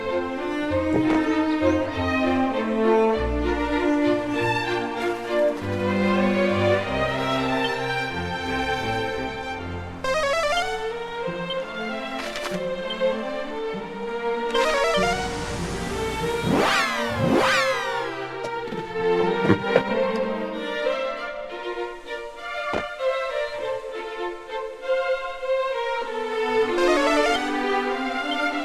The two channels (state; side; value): identical; both; correlation 1.00